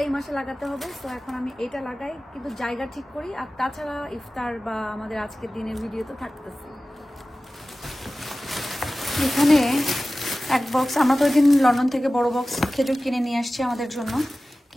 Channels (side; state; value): both; normal; correlation 0.96